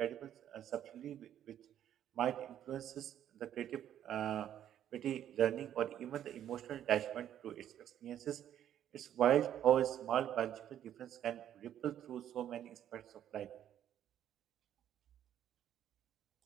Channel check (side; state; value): left; quieter; 10.7 dB